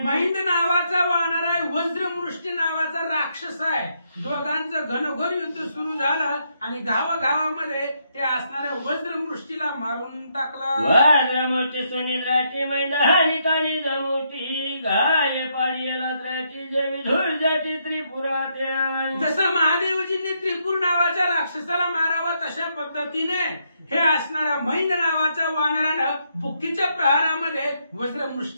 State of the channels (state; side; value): inverted; both; correlation -0.76